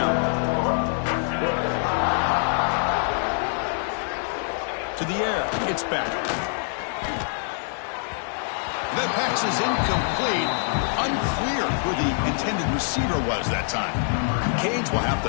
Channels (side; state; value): right; silent; 62 dB below the other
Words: To the air, it's back. That pass is incomplete. Unclear who the intended receiver was that time. Cage will have